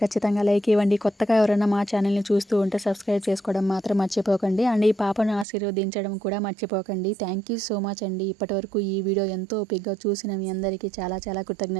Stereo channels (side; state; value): left; drops out; at 5.5 s